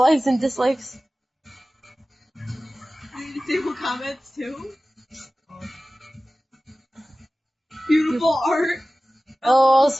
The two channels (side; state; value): both; normal; correlation 0.97